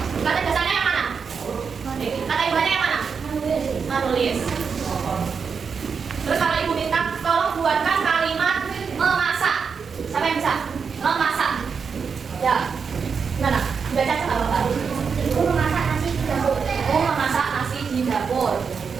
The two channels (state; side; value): quieter; left; 5.9 dB